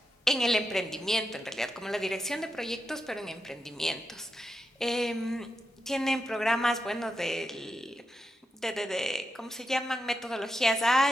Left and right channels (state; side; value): normal; both; correlation 0.87